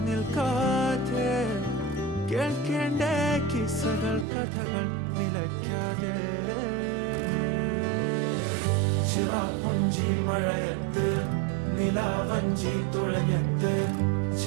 നിൽക്കാതെ, കേൾക്കേണ്ട കിസ്സകൾ കഥകൾ നിലയ്ക്കാതെ. ചിറാപ്പുഞ്ചി മഴയത്ത് നിലാവഞ്ചി തുഴഞ്ഞത്ത്,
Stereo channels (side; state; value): left; drops out; at 4.2 s